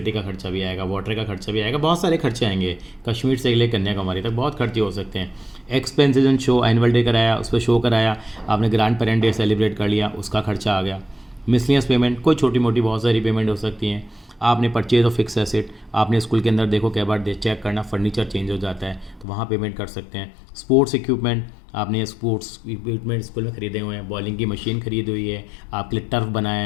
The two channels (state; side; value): drops out; right; at 19.2 s